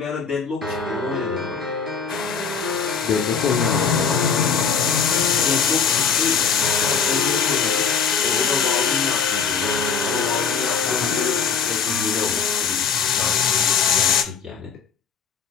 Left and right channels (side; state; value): right; quieter; 6.1 dB